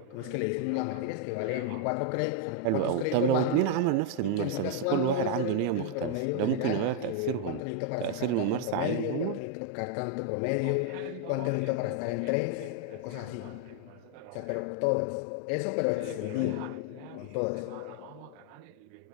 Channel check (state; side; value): different; both; correlation 0.00